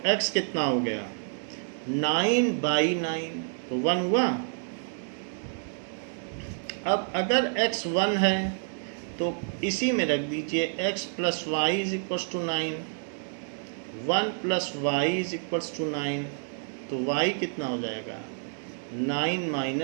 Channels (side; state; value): left; silent; digital silence